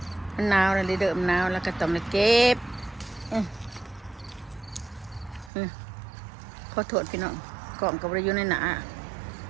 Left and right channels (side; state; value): left; drops out; at 5.5 s